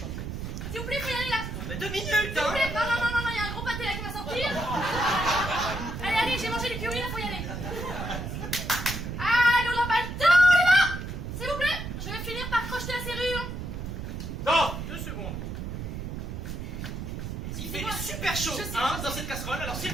S'il vous plaît, faut y aller là. Mais 2 minutes, S'il vous hein. plaît. Non, il y a un gros pâté là qui va sortir. Allez, j'ai mangé les curry là, faut y aller. Allez, on n'a pas le temps, on y va. S'il vous plaît, je vais finir par crocheter la serrure. Non, 2 secondes. Il fait super chaud, Je sais, hein, je dans cette casserole, alors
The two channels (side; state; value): right; noise; rumble, 6 dB below the sound